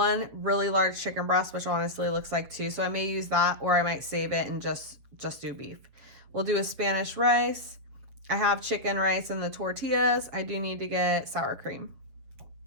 really large chicken breast, which honestly looks like 2. So I may use that or I might save it and just do beef. We'll do a Spanish rice. I have chicken, rice, and the tortillas. I do need to get sour cream.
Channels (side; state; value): left; late; 7.5 ms